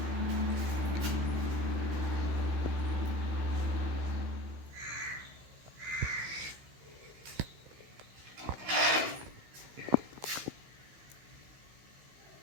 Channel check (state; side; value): late; left; 15 ms